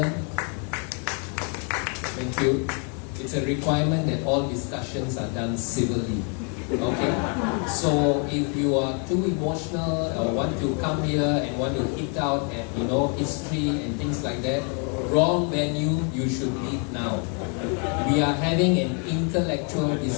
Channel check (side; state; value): right; quieter; 38.7 dB